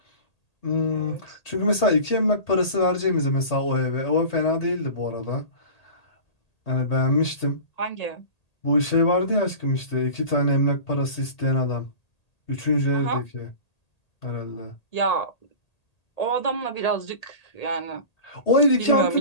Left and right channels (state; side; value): late; right; 1.8 ms